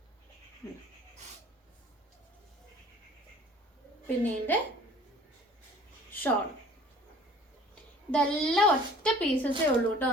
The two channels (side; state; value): both; normal; correlation 0.50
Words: പിന്നെ ഇതിൻ്റെ ഷോൾ. ഇതെല്ലാം ഒറ്റ പീസസേ ഉള്ളൂ കേട്ടോ.